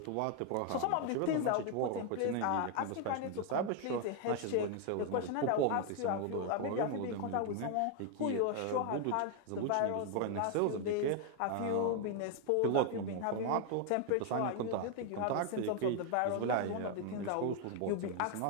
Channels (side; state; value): both; different; correlation 0.01